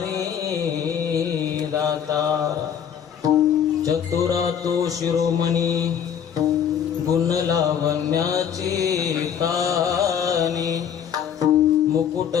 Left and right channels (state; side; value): quieter; right; 8.4 dB